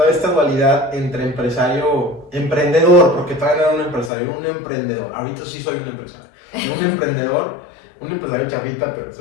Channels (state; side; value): drops out; right; at 4.1 s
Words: esta dualidad entre emprendedor, porque todavía no era un empresario, era un emprendedor. Ahorita sí soy un empresario. Un emprendedor un empresario chafita, pero